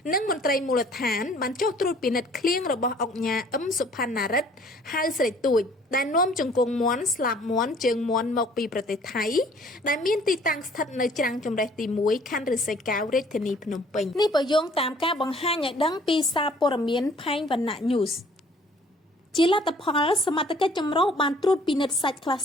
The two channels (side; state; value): both; normal; correlation 0.56